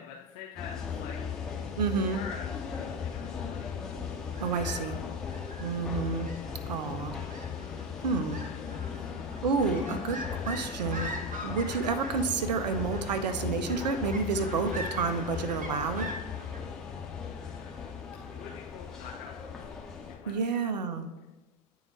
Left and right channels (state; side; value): normal; both; correlation 0.10